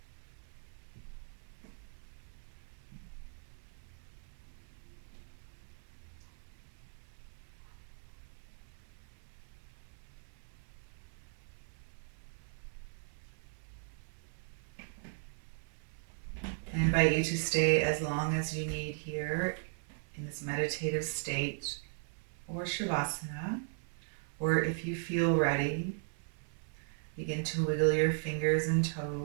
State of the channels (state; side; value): silent; left; 52 dB below the other